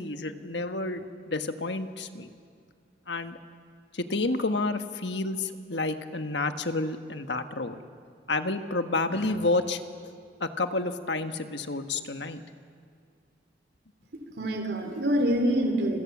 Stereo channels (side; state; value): both; normal; correlation 0.26